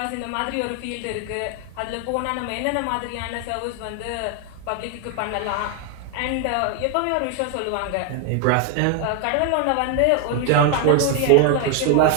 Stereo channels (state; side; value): different; both; correlation 0.01